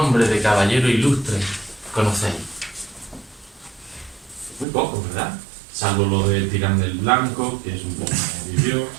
de caballeros ilustres conocéis? Muy pocos, ¿verdad? Salvo lo de Tirán del Blanco, que es un poco que vivió,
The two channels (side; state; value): left; drops out; at 4.7 s